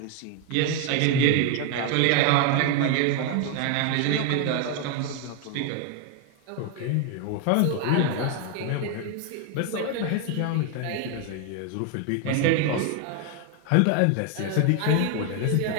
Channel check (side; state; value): both; different; correlation 0.01